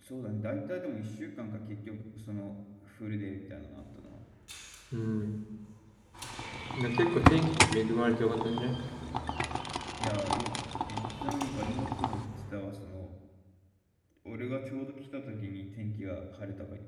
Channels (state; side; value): identical; both; correlation 1.00